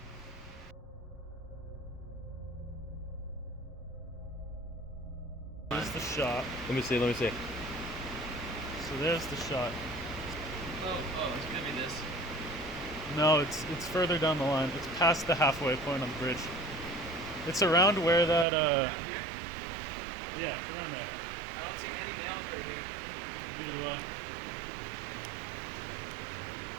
there's the shot. Let me see. So there's the shot. Oh, it's gonna be this. No, it's further down the line. It's past the halfway point on the bridge. It's around where that Around here? yeah, it's around there. I don't see any nails right here.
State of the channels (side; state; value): left; drops out; at 18.4 s